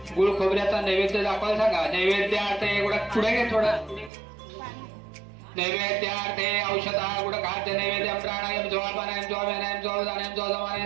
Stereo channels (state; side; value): drops out; left; at 4.1 s